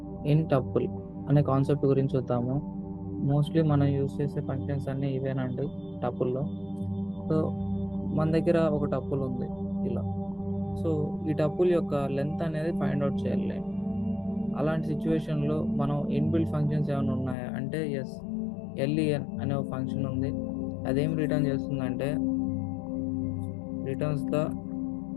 ఇన్ టపుల్ అనే కాన్సెప్ట్ గురించి చూద్దాము. మోస్ట్లీ మనం యూజ్ చేసే ఫంక్షన్స్ అన్నీ ఇవేనండి టపుల్లో. సో మన దగ్గర ఒక టపుల్ ఉంది ఇలా. సో ఈ టపుల్ యొక్క లెంత్ అనేది ఫైండ్ అవుట్ చేయాలి. అలాంటి సిచ్యువేషన్లో మనం ఇన్బిల్ట్ ఫంక్షన్స్ ఏమైనా ఉన్నాయా అంటే ఎస్, ఎల్ఈఎన్ అనే ఒక ఫంక్షన్ ఉంది. అదేం రిటర్న్ చేస్తుందంటే returns the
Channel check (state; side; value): drops out; right; at 17.4 s